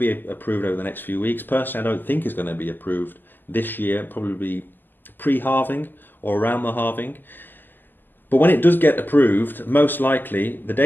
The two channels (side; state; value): right; late; 0.091 ms